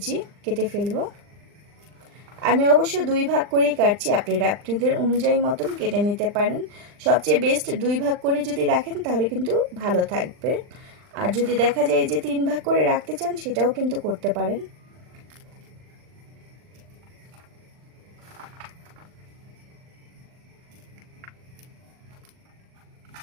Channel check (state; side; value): late; left; 39 ms